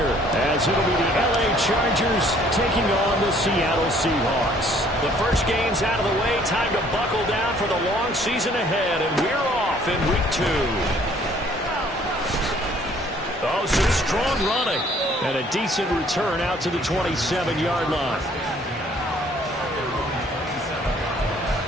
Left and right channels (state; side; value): normal; both; correlation 0.59